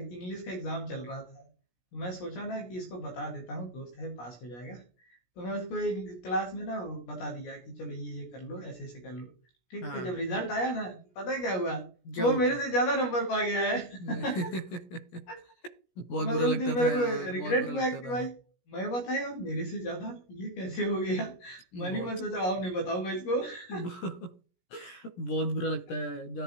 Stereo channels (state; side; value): late; right; 17 ms